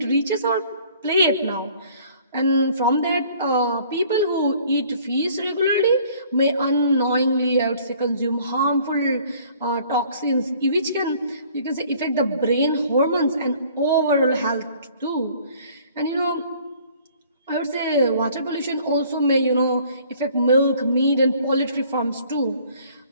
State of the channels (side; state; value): both; inverted; correlation -0.56